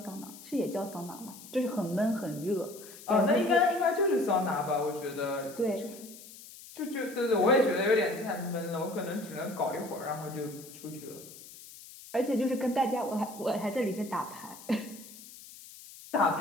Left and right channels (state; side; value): noise; left; hiss, 17 dB below the sound